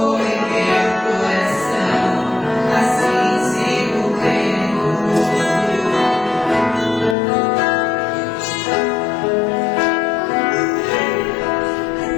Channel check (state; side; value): drops out; right; at 7.2 s